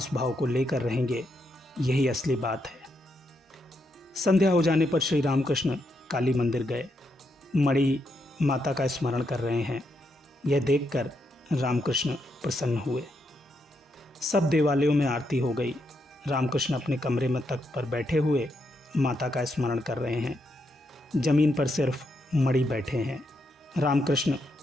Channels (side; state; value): both; normal; correlation 0.80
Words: भाव को लेकर रहेंगे, यही असली बात है। संध्या हो जाने पर श्री रामकृष्ण काली मंदिर गए। मणि माता का स्मरण कर रहे हैं। यह देखकर रामकृष्ण प्रसन्न हुए। सब देवालयों में आरती हो गई। रामकृष्ण अपने कमरे में तख्त पर बैठे हुए माता का स्मरण कर रहे हैं। जमीन पर सिर्फ मणि बैठे हैं। रामकृष्ण